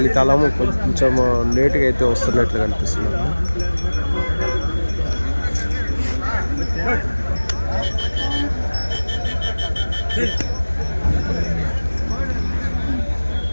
కొంచెం లేట్గా అయితే వస్తున్నట్లు కనిపిస్తుంది.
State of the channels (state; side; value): inverted; both; correlation -1.00